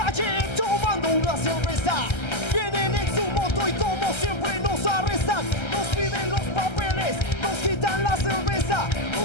tomando una cerveza. Vienen en su moto y como siempre nos arrestan. Nos piden los papeles, nos quitan la cerveza,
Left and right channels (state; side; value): late; right; 1.3 ms